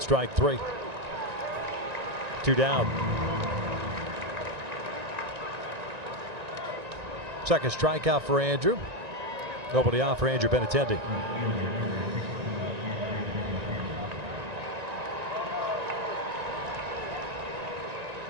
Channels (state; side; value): late; left; 1.9 ms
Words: strike 3. 2 down. Second strikeout for Andrew. Nobody out for Andrew Benintendi.